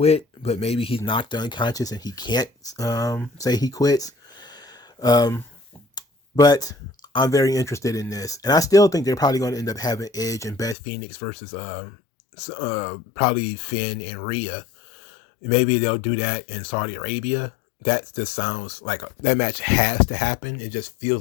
but maybe he's knocked unconscious and he can't say he quits. But I'm very interested in this. And I still think they're probably going to end up having Edge and Beth Phoenix versus probably Finn and Rhea. Maybe they'll do that in Saudi Arabia. That just sounds like that match has to happen. It just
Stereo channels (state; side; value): drops out; right; at 10.8 s